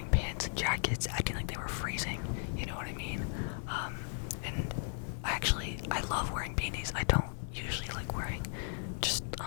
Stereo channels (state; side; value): silent; right; digital silence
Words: pants and jackets acting like they were freezing, you know what I mean? And I love wearing beanies. I don't usually like wearing just